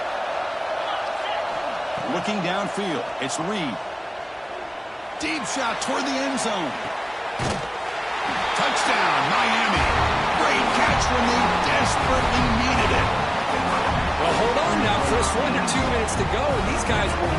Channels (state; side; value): identical; both; correlation 1.00